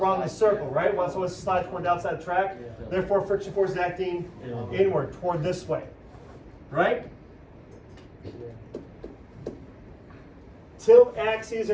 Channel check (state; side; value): identical; both; correlation 1.00